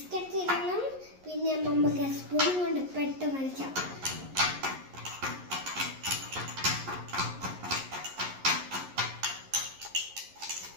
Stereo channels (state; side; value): late; left; 11 ms